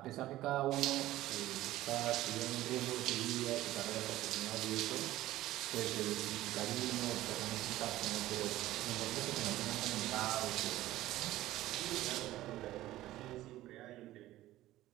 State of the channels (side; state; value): left; quieter; 15.5 dB